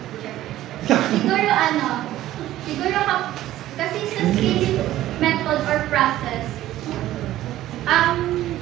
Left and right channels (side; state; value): left; quieter; 14.2 dB